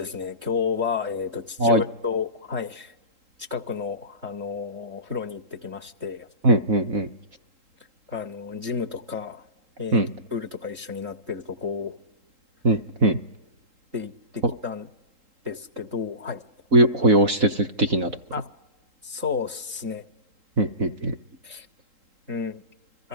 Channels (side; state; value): left; late; 3.8 ms